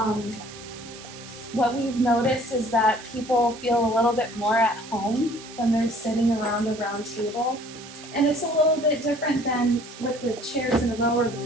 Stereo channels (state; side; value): noise; right; hiss, 16 dB below the sound